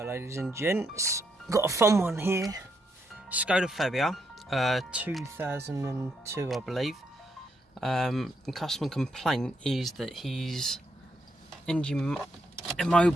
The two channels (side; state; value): both; normal; correlation 0.78